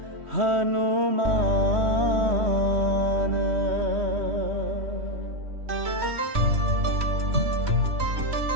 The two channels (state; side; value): late; left; 3.1 ms